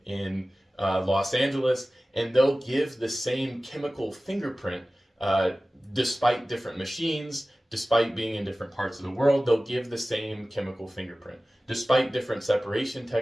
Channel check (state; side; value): normal; both; correlation 0.97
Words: in Los Angeles, and they'll give the same chemical fingerprint despite different machines, despite being in different parts of the world. They'll give the same chemical fingerprint despite different separation